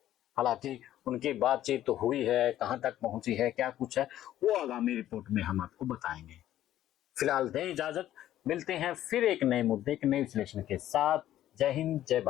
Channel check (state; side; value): quieter; right; 12.8 dB